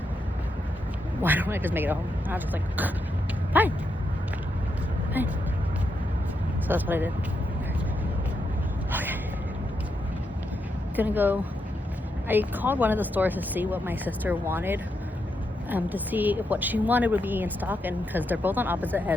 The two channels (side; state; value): both; normal; correlation 0.82